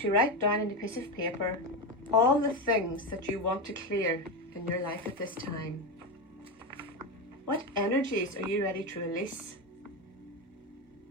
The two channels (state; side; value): normal; both; correlation 0.15